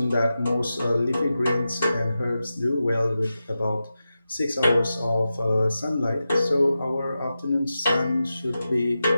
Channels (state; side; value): inverted; both; correlation -0.92